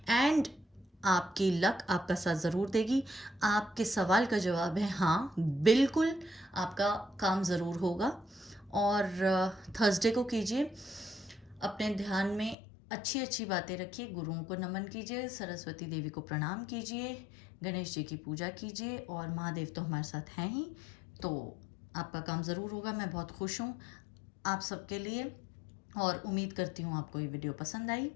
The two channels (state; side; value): drops out; right; at 12.6 s